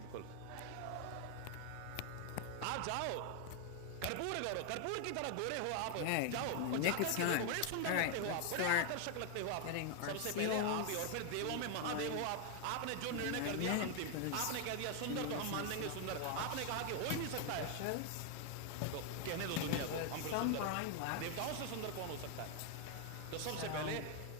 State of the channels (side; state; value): both; different; correlation 0.01